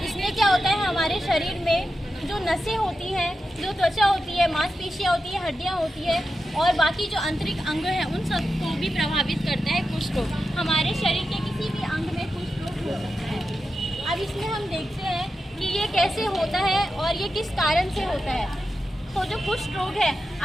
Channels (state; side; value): normal; both; correlation 0.90